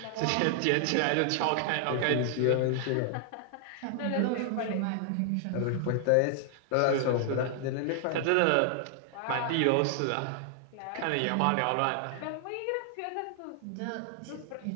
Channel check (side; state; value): both; different; correlation 0.00